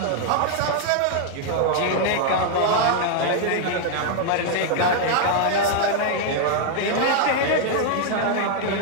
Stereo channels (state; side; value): different; both; correlation 0.00